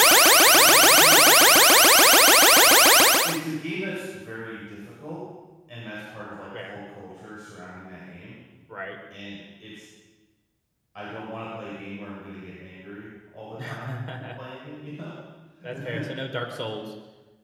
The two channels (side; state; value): both; identical; correlation 1.00